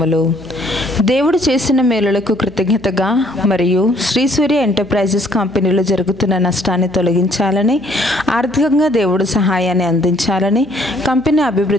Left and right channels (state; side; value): noise; right; hum, 21 dB below the sound